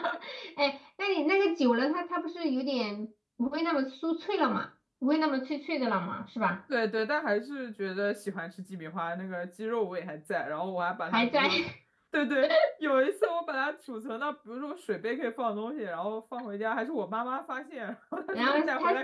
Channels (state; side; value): identical; both; correlation 1.00